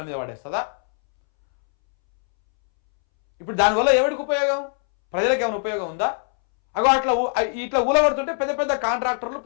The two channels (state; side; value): silent; right; 64 dB below the other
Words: మీద పడేస్తుందా? ఇప్పుడు దానివల్ల ఎవరికి ఉపయోగం? ప్రజలకు ఏమైనా ఉపయోగం ఉందా? అగో ఇట్లా ఊలగొడుతుంటే పెద్ద పెద్ద కాంట్రాక్టర్లు,